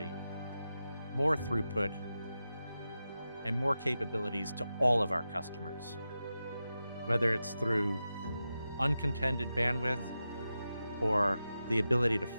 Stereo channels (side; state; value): both; inverted; correlation -0.91